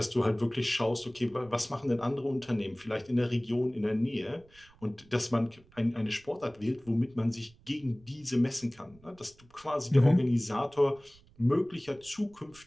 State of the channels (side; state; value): right; noise; rumble, 27 dB below the sound